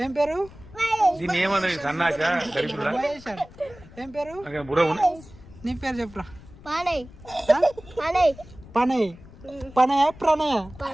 ఏం పేరు? మహేష్ అని ఏం పేరు? నీ పేరు చెప్పురా. పనయ్. పనయ ప్రణయ?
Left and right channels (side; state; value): left; noise; rumble, 20 dB below the sound